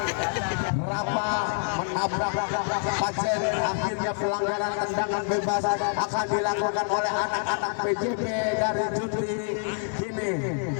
Rafa menabrak Pajen, akhirnya pelanggaran tendangan bebas akan dilakukan oleh anak-anak PJB dari Juti. Kini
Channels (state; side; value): silent; right; 60 dB below the other